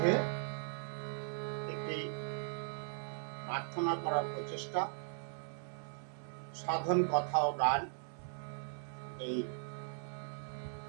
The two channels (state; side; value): silent; left; 52 dB below the other